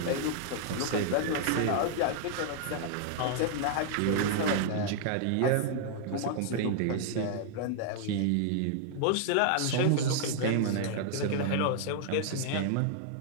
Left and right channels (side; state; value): both; different; correlation -0.01